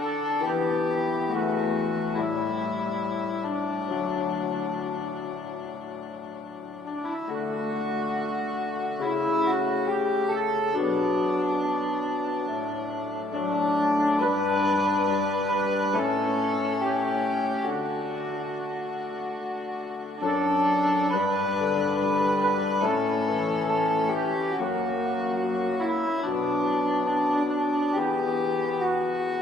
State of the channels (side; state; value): both; normal; correlation 0.69